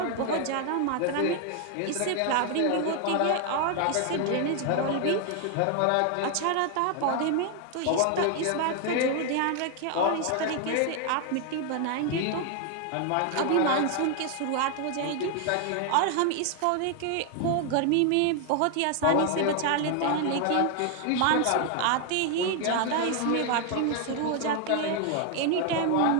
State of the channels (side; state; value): both; different; correlation 0.00